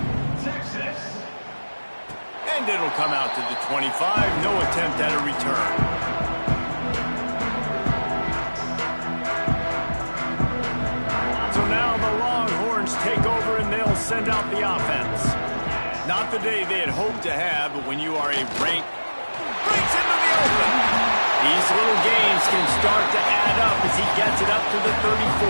And it'll come out to the 25. No attempt at a return. Now the Longhorns take over and they'll send out the offense. Not the day they had hoped to have, but when you are a rank, breaks into the open. These little games can start to add up as he gets it up to the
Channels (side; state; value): both; inverted; correlation -1.00